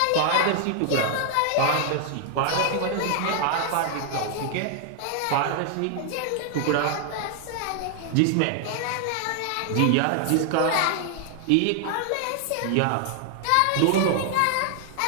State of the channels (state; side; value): different; both; correlation 0.00